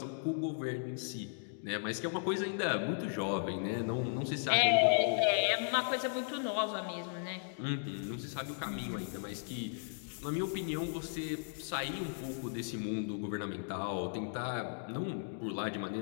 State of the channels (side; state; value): right; silent; digital silence